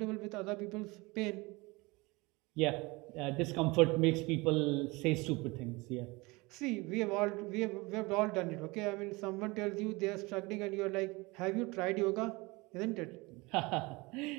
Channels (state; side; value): quieter; left; 24.3 dB